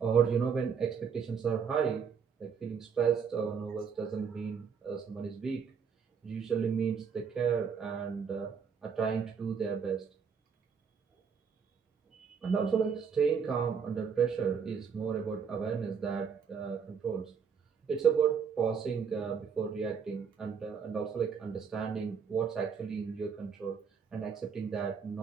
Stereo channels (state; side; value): quieter; left; 6.5 dB